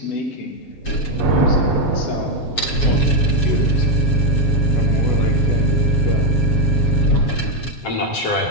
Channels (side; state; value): right; late; 7.3 ms